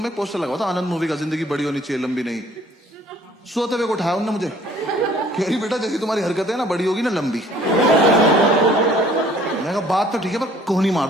में पोस्टर लगा था आनंद मूवी का, जिंदगी बड़ी होनी चाहिए लंबी नहीं। सोते हुए को उठाया उन्होंने मुझे, कह रही बेटा जैसी तुम्हारी हरकतें है ना बड़ी होगी ना लंबी। मैंने कहा बात तो ठीक है पर कोहनी मार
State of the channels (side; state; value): both; normal; correlation 0.56